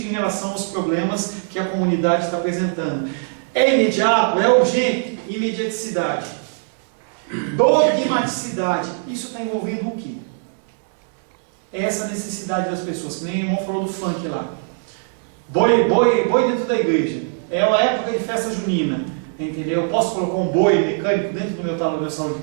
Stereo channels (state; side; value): silent; left; digital silence